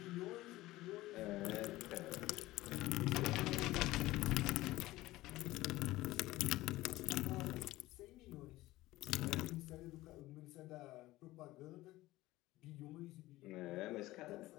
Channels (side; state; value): right; quieter; 17.6 dB